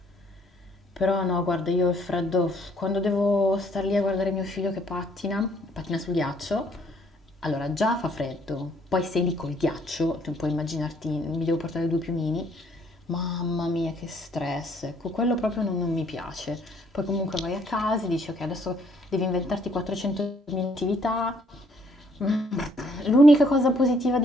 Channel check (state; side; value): normal; both; correlation 0.65